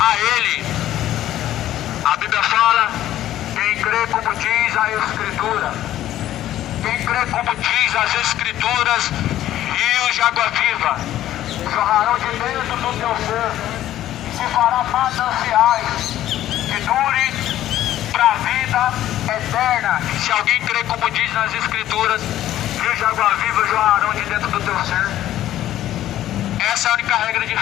ele. A Bíblia fala, quem crê como diz a Escritura. Quem crê como diz as Escrituras, rios de água viva jorrarão de dentro do teu ser. Se fará mananciais que dure para a vida eterna. Se alguém crê como diz nas Escrituras, rios de água viva jorrarão de dentro do teu ser. Essa é a única regra de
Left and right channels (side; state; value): right; quieter; 13.0 dB